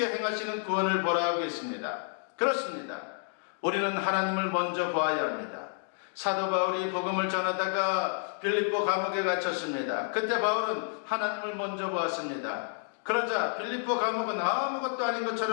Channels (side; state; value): right; silent; digital silence